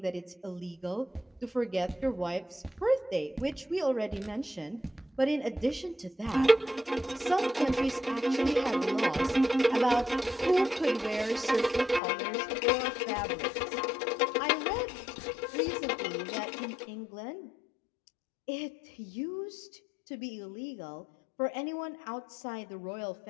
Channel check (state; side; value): drops out; right; at 12.0 s